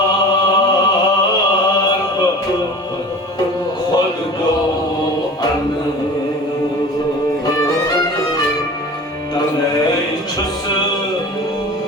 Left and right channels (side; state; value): both; normal; correlation 0.39